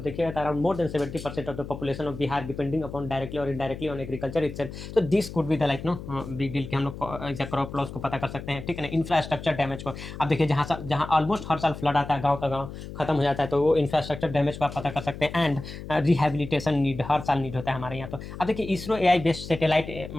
देखिएगा around more than 70% of the population of Bihar depending upon directly और इनडायरेक्टली ऑन एग्रीकल्चर इटसेल्फ, तो this could be the like know big deal कि हम लोग क्रॉप लॉस को पता कर सकते हैं, ठीक है ना। इंफ्रास्ट्रक्चर डैमेज को अब देखिए, जहाँ ऑलमोस्ट हर साल फ्लड आता है, गाँव का गाँव खत्म हो जाता है, तो वो इंफ्रास्ट्रक्चर डैमेज को आप पता कर सकते हैं। एंड रिहेबिलिटेशन नीड हर साल नीड होता है हमारे यहाँ। तो अब देखिए इसरो एआई बेस्ड सैटेलाइट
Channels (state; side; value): noise; left; hum, 11 dB below the sound